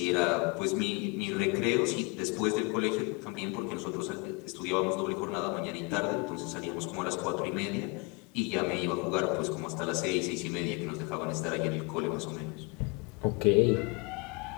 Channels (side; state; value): right; quieter; 28.9 dB